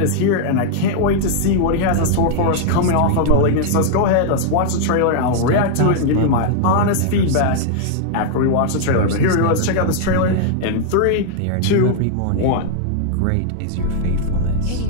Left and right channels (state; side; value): different; both; correlation -0.01